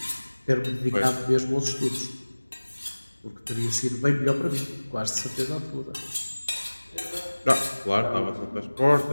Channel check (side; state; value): both; inverted; correlation -1.00